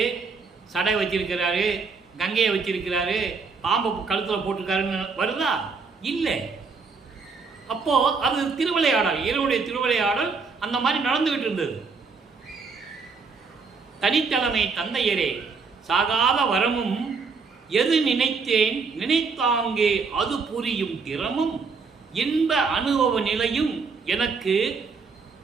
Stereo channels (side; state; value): left; quieter; 4.9 dB